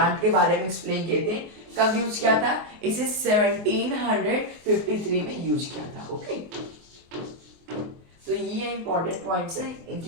के बारे में एक्सप्लेन किए थे। कब यूज किया था? इसे 1753 में यूज किया था। ओके, तो ये इंपॉर्टेंट पॉइंट्स है।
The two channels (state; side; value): late; left; 24 ms